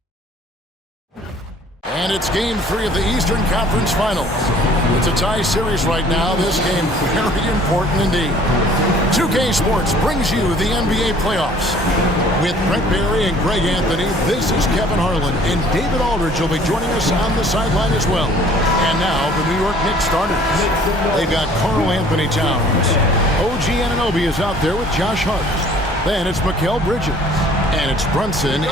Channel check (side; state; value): both; normal; correlation 0.54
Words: And it's Game 3 of the Eastern Conference Finals. It's a tie series right now. This game very important indeed. 2K Sports brings you the NBA playoffs. With Brent Barry and Greg Anthony, this is Kevin Harlan, and David Aldridge will be joining us on the sideline as well. And now, the New York Knicks starters. They've got Karl Anthony Towns. OG Anunoby is out there with Josh Hart. Then it's Mikal Bridges. And it's Brunson